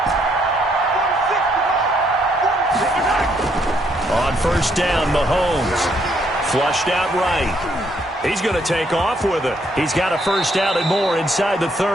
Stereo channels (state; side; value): normal; both; correlation 0.71